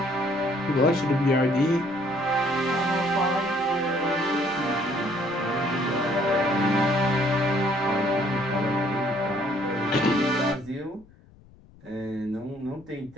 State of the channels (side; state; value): left; noise; rumble, 25 dB below the sound